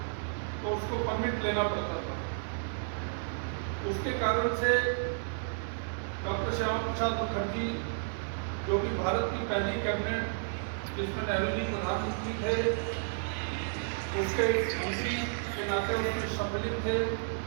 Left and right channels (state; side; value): silent; left; digital silence